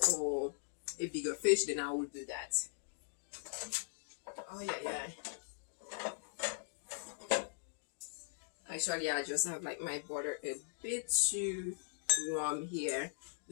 or a bigger fish, then I would do that. Oh yeah. Actually, I just have like my butter a bit too warm here.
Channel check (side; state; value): right; silent; digital silence